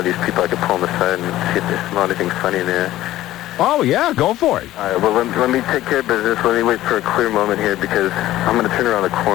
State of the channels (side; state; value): right; quieter; 14.9 dB